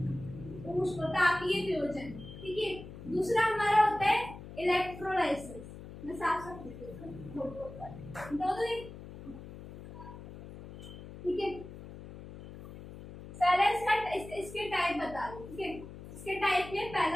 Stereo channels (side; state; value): left; noise; hum, 14 dB below the sound